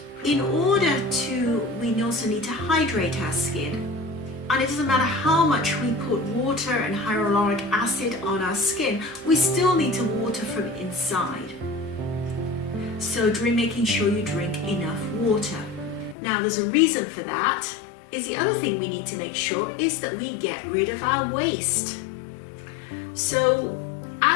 in order we also need to hydrate our skin. And it doesn't matter how much we put water and hyaluronic acid on our skin, we still need to water from inside. So making sure you drink enough water. Now there's a reason for that. Is the other thing we need to make sure is that we get rid of our waste. So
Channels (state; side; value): drops out; right; at 16.2 s